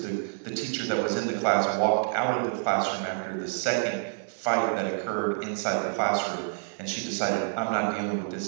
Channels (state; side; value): silent; left; 59 dB below the other